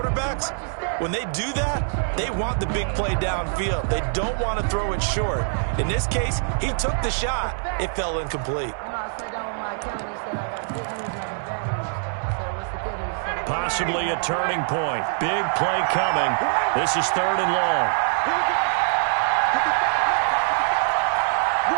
when they do that, they want the big play downfield. They don't want to throw it short. In this case, he took the shot. It fell incomplete. Possibly a turning point. Big play coming. This is 3rd and long.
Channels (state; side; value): silent; left; digital silence